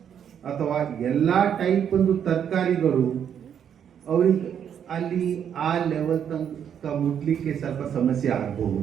ಅಥವಾ ಎಲ್ಲ ಟೈಪ್ ಒಂದು ತರಕಾರಿಗಳು ಅವರಿಗೆ ಅಲ್ಲಿ ಆ ಲೆವೆಲ್ ತನಕ ಮುಟ್ಲಿಕ್ಕೆ ಸ್ವಲ್ಪ ಸಮಸ್ಯೆ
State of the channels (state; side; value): quieter; left; 8.6 dB